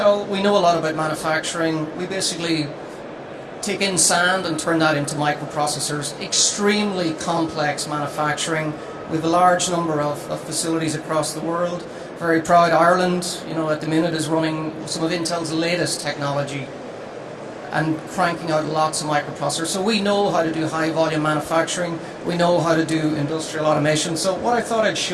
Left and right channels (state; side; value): identical; both; correlation 1.00